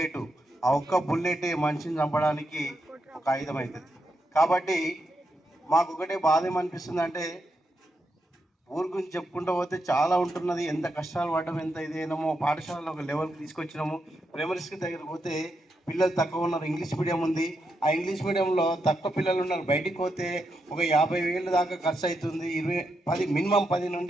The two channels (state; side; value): normal; both; correlation 0.83